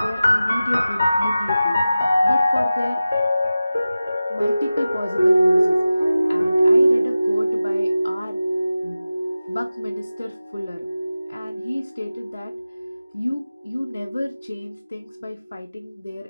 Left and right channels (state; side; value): inverted; both; correlation -0.95